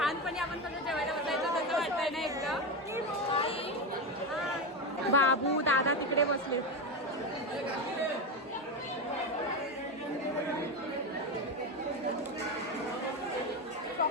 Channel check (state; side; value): normal; both; correlation 0.15